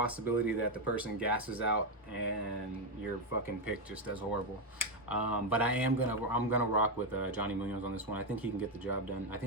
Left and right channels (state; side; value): normal; both; correlation 0.06